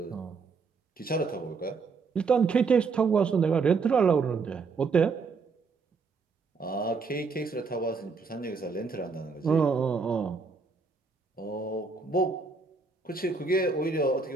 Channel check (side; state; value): left; quieter; 4.7 dB